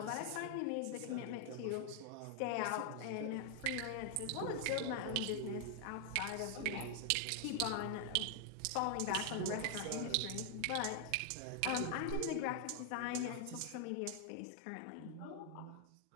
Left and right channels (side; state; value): both; different; correlation 0.00